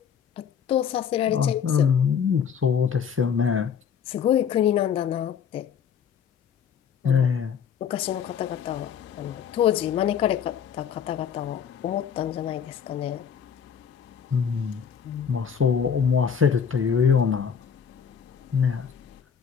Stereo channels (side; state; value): right; quieter; 7.5 dB